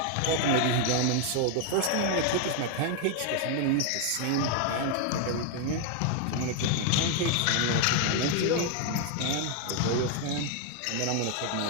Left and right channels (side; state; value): both; different; correlation 0.00